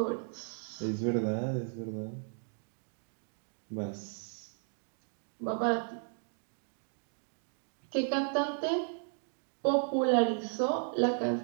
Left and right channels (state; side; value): silent; left; 54 dB below the other